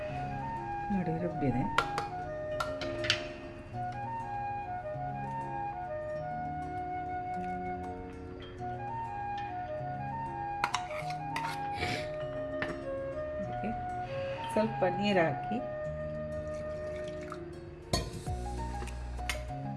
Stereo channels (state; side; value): identical; both; correlation 1.00